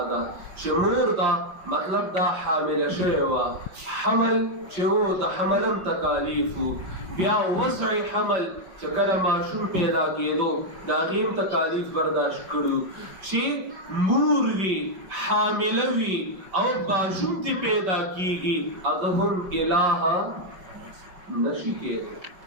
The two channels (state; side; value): late; left; 5.4 ms